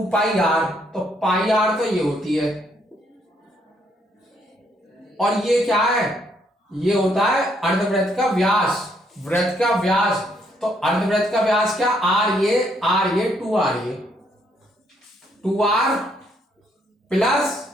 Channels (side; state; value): both; normal; correlation 0.71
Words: पाई r, तो पाई r तो ये होती है, और ये क्या है? ये होता है अर्धवृत्त का व्यास, वृत्त का व्यास। तो अर्धवृत्त का व्यास क्या? r ये 2r ये 2r प्लस